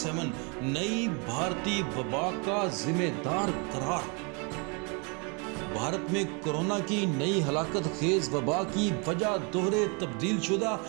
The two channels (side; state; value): left; quieter; 33.3 dB